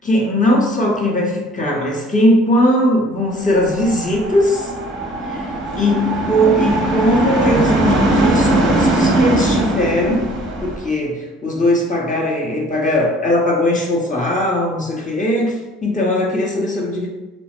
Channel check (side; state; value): both; normal; correlation 0.54